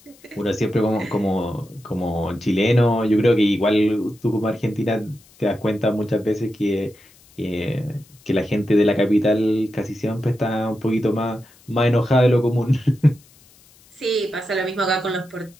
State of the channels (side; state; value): left; noise; hiss, 28 dB below the sound